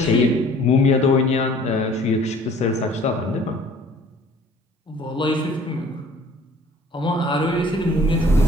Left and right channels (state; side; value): normal; both; correlation 0.53